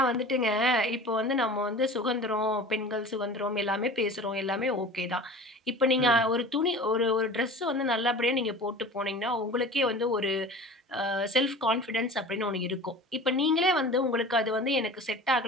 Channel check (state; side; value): normal; both; correlation 0.39